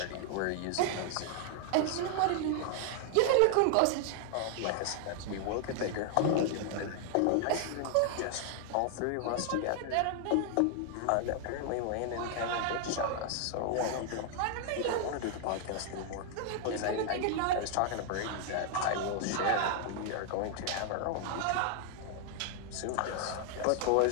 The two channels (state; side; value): different; both; correlation 0.00